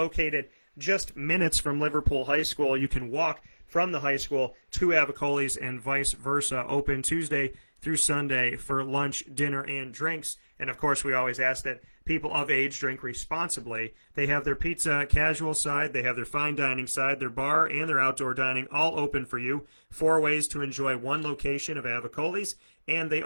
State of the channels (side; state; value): both; inverted; correlation -1.00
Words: just minutes from Liverpool High School, you can walk from the high school to Avicoli's and vice versa. Open Tuesday through Sunday for lunch, dinner, and drinks. And, of course, we always ask that people of age drink responsibly. They have their pizza casual side, they have their fine dining side, their bar, and their outdoor dining all open for you. 4 ways to enjoy one location of Avicoli's. And they